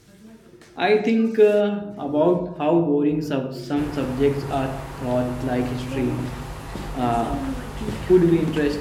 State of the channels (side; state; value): both; identical; correlation 1.00